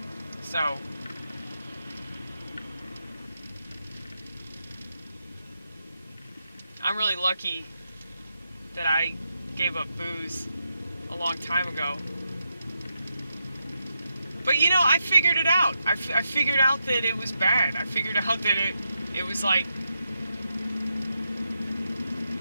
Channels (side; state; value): both; inverted; correlation -0.85